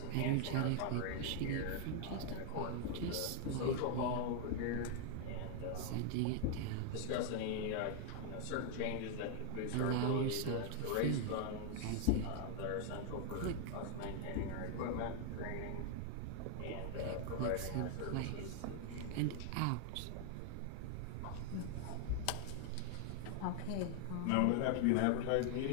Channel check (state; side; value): different; both; correlation 0.00